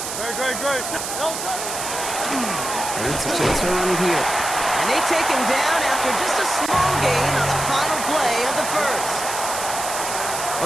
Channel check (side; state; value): right; noise; hiss, 5 dB below the sound